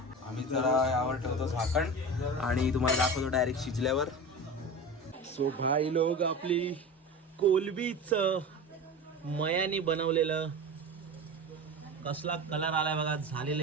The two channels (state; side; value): normal; both; correlation 0.30